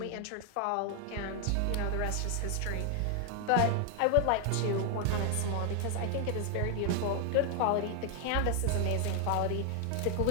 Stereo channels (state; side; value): different; both; correlation 0.00